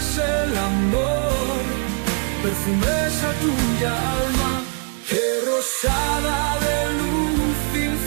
el amor, perfumes a tuya alma, que rosada de luz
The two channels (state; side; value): quieter; left; 39.1 dB